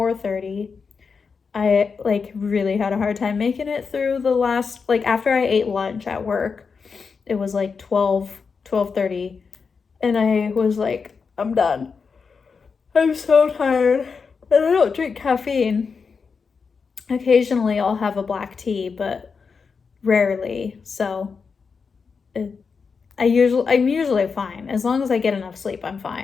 I like really had a hard time making it through the last, like after I ate lunch at work, it was like 12:30, and I was like, I'm done. I'm so tired. And I don't drink caffeine. Occasionally I'll have a black tea, but rarely. So I'm usually fine. As long as I get enough sleep, I'm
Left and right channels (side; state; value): right; quieter; 5.4 dB